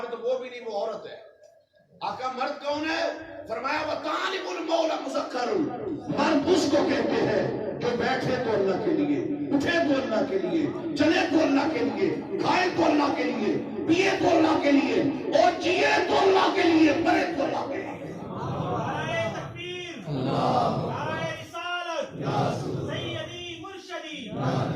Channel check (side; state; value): both; identical; correlation 1.00